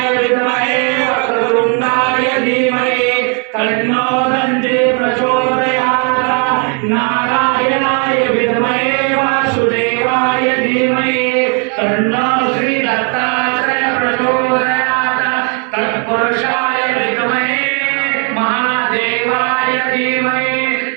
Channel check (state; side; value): quieter; left; 38.9 dB